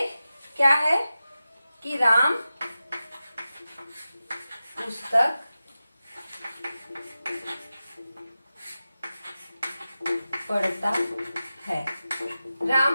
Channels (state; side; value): inverted; both; correlation -0.94